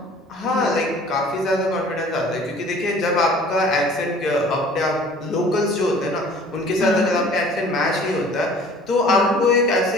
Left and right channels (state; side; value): normal; both; correlation 0.49